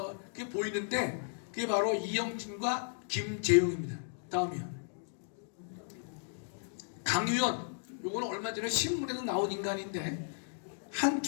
그게 보이는데, 그게 바로 이영진과 김재용입니다. 다음이요. 강유연, 요거는 얼마 전에 신문에도 나온 인간인데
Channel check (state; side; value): silent; right; digital silence